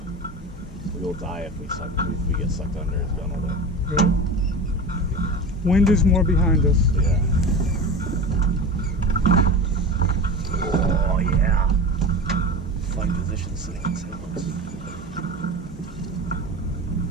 We will die if we get sucked under his gunnel there. Right. Wind is more behind us. Yeah. Oh yeah. Fine position sitting in sailboats.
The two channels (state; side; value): normal; both; correlation 0.30